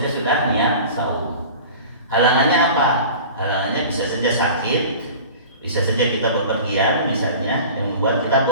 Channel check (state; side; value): inverted; both; correlation -0.39